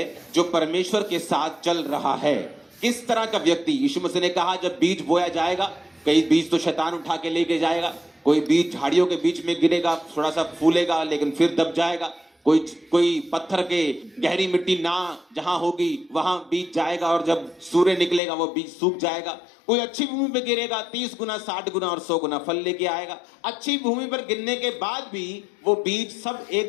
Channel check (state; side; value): drops out; right; at 18.2 s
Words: जो परमेश्वर के साथ चल रहा है। किस तरह का व्यक्ति? यीशु मसीह ने कहा जब बीज बोया जाएगा, कई बीज तो शैतान उठा के लेके जाएगा, कोई बीज झाड़ियों के बीच में गिरेगा, थोड़ा सा फूलेगा लेकिन फिर दब जाएगा, कोई पत्थर के गहरी मिट्टी ना जहां होगी वहां बीज जाएगा और जब सूर्य निकलेगा वो बीज सूख जाएगा। कोई अच्छी भूमि पर गिरेगा, 30 गुना 60 गुना और 100 गुना फल लेके आएगा। अच्छी भूमि पर गिरने के बाद भी वो बीज सब